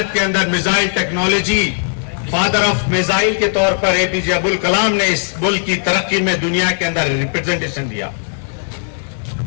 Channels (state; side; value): silent; right; digital silence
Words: के अंदर missile technology, father of missile के तौर पर एपीजे अब्दुल कलाम ने इस मुल्क की तरक्की में दुनिया के अंदर रिप्रेजेंटेशन दिया।